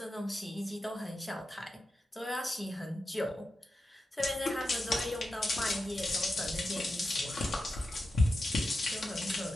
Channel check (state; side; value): normal; both; correlation 0.90